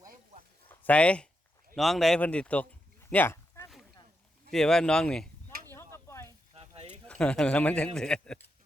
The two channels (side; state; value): both; normal; correlation 0.85